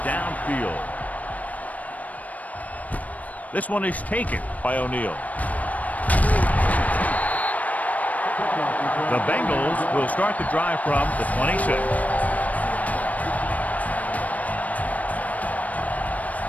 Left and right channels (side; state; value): right; late; 0.072 ms